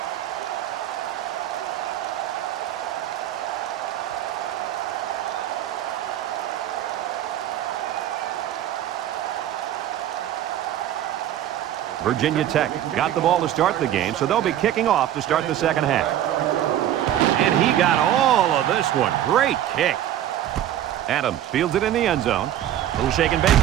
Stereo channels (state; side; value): quieter; left; 11.8 dB